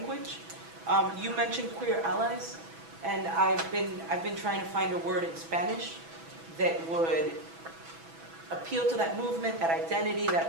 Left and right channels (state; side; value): late; left; 6.1 ms